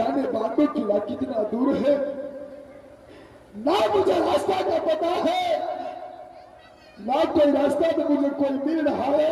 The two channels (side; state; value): both; identical; correlation 1.00